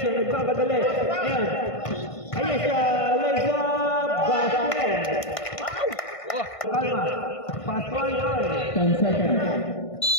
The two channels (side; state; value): right; late; 1.5 ms